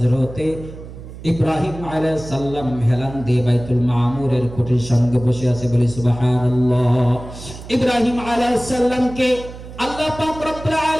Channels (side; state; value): right; noise; hum, 14 dB below the sound